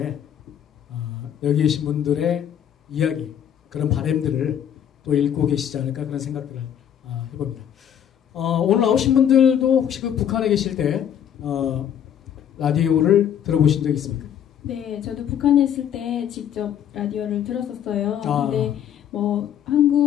여기 계신 분들의 이야기 그런 바람들을 또 읽고 계시지 않을까 그런 생각들을 해봅니다. 오늘 나오신 분들도 혹시 그 북한에 계실 때 라디오를 들어보신 적 있습니까? 네, 저도 북한에 있을 때 직접 라디오를 들었었어요. 근데 뭐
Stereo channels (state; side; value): quieter; right; 9.5 dB